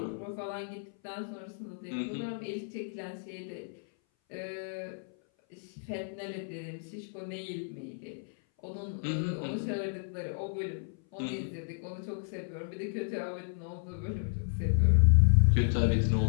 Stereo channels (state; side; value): silent; right; 56 dB below the other